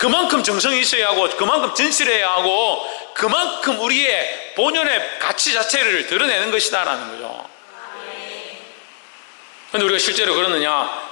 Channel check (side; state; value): right; silent; 67 dB below the other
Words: 정성이 있어야 하고 그만큼 진실해야 하고 그만큼 우리의 본연의 가치 자체를 드러내는 것이다라는 거죠. 그런데 우리가 실제로 그러느냐?